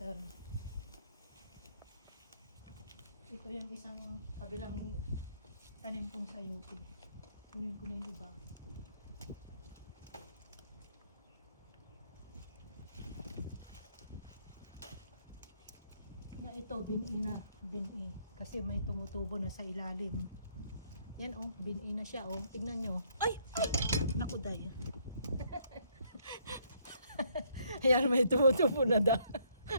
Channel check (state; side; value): inverted; both; correlation -0.68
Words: Ito yung isang kabilang tanim kong sayote. Kunin ko na yung iba. Na ito, bin-i kasi may tumutubo na sa ilalim. Yan, oh, bin-i na siya, oh. Tignan nyo. Ay! Naku, day. Ayan, may tumutubo na da.